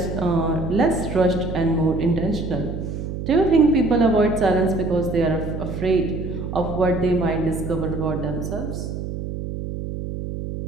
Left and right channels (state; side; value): noise; right; hum, 6 dB below the sound